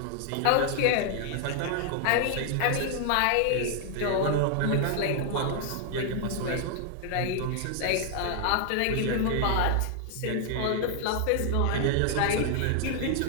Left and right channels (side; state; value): both; different; correlation 0.00